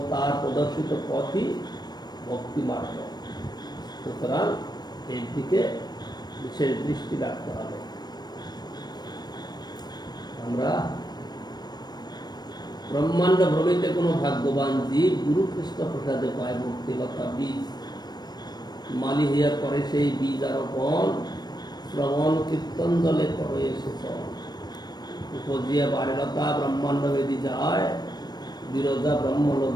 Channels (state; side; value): late; right; 0.20 ms